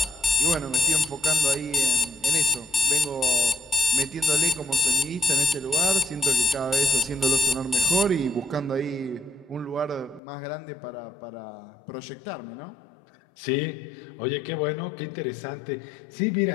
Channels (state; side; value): drops out; right; at 10.2 s